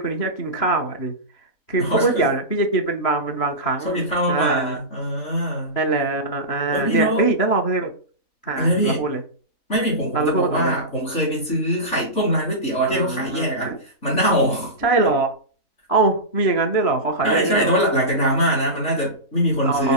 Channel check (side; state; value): right; late; 3.4 ms